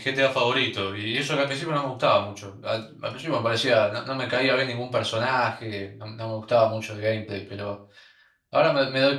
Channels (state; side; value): identical; both; correlation 1.00